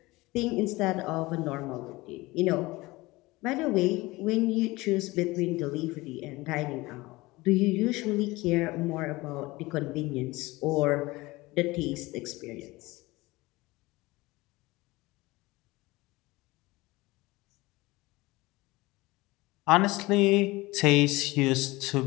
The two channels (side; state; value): right; quieter; 21.1 dB